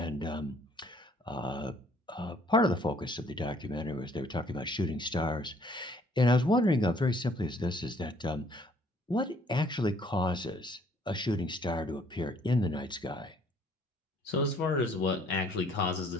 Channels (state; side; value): normal; both; correlation 0.61